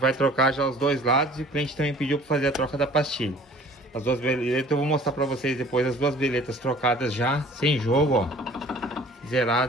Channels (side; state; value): both; normal; correlation 0.49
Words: trocar já os dois lados e o cliente também pediu para fazer a troca da pastilha. As duas beletas, eu vou mostrar para vocês depois as duas beletas trocadas já, sem jogo, ó.